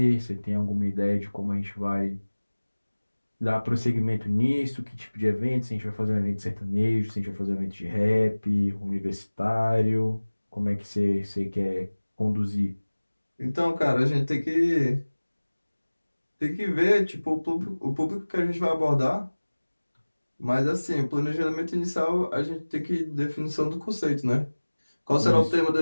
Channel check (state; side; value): inverted; both; correlation -1.00